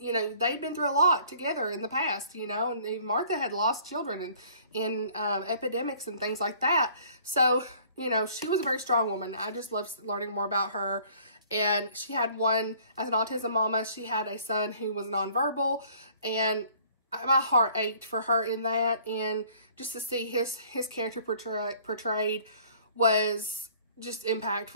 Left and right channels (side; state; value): both; inverted; correlation -0.55